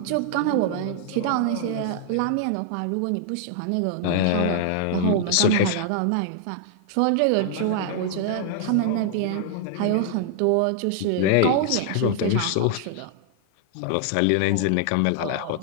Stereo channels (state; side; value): different; both; correlation -0.01